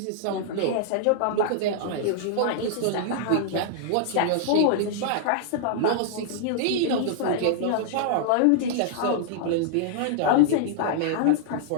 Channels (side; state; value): both; different; correlation -0.01